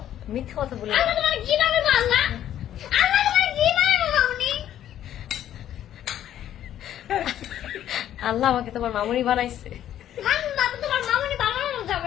মিথ্যা কথা বলি আল্লাহ তোমার কি নামে বাংলা? আল্লাহ তোমার কি নামে বাংলা? আল্লাহ আমাকে তোমার মামুনি বানাইছে। বাবা তোমার মামুনি বানানো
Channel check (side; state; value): right; quieter; 11.4 dB